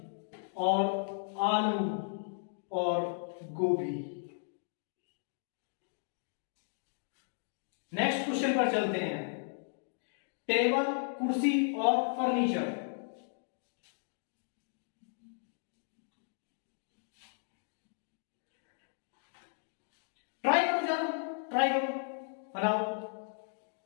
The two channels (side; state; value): right; silent; digital silence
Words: और आलू और गोभी। नेक्स्ट क्वेश्चन पर चलते हैं, टेबल, कुर्सी और फर्नीचर। ट्राई करो, जानो ट्राई करो, बनाओ।